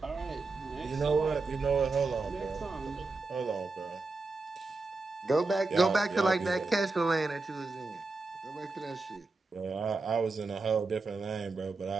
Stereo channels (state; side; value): quieter; left; 3.6 dB